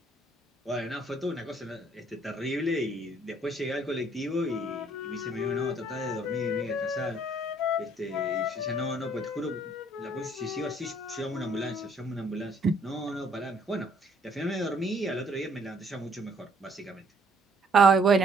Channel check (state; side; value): normal; both; correlation 0.63